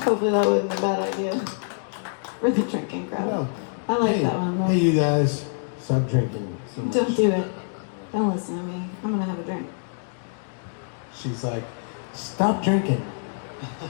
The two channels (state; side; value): silent; right; digital silence